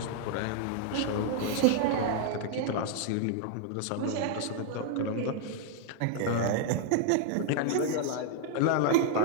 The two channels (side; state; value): both; different; correlation 0.00